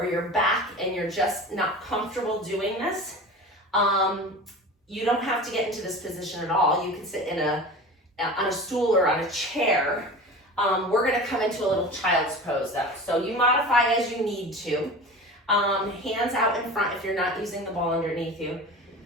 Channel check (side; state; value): both; normal; correlation 0.34